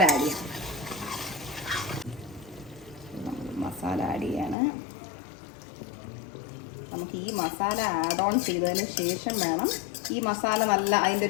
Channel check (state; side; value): drops out; right; at 4.5 s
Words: ആഡ് ചെയ്യാം. മസാല ആഡ് ചെയ്യാണ്. നമുക്ക് ഈ മസാല ആഡ് ഓൺ ചെയ്തതിന് ശേഷം വേണം, ഈ മസാല നല്ല അതിൻ്റെ